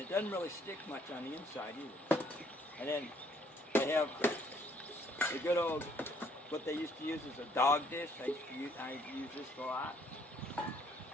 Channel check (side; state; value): both; normal; correlation 0.64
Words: doesn't really stick much on the inside either. And then I have the good old, what they used to use is a dog dish. I use this a lot.